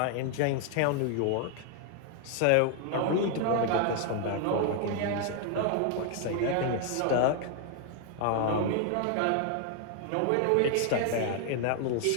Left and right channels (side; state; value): both; different; correlation 0.00